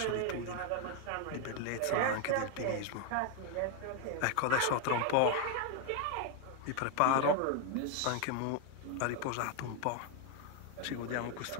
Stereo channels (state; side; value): different; both; correlation 0.01